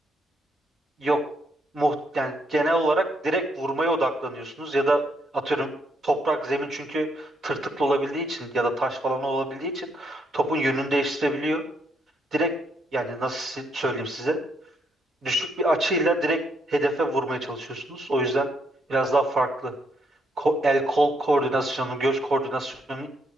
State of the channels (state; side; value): normal; both; correlation 0.75